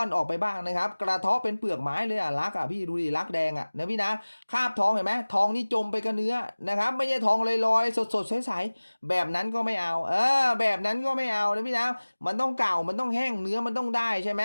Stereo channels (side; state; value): both; inverted; correlation -1.00